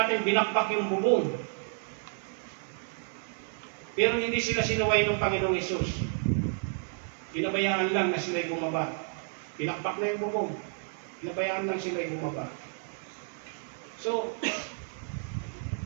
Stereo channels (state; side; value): silent; left; 57 dB below the other